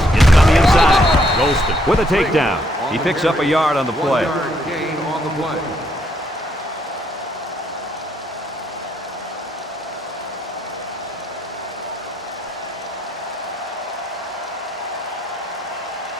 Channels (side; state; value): both; normal; correlation 0.72